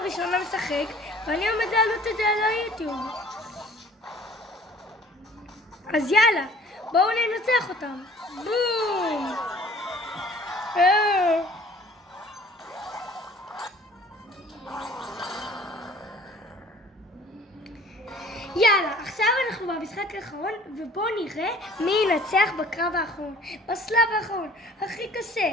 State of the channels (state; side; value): normal; both; correlation 0.52